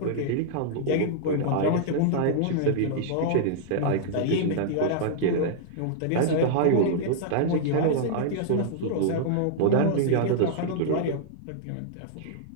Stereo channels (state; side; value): different; both; correlation -0.01